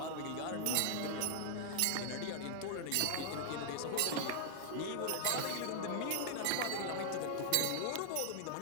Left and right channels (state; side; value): different; both; correlation -0.01